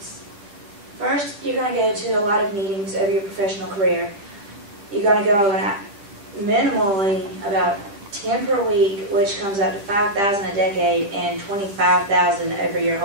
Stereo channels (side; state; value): left; late; 10 ms